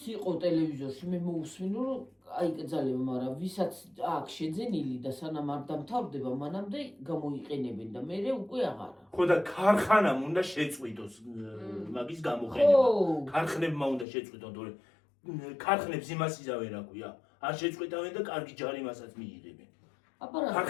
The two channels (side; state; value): right; drops out; at 14.1 s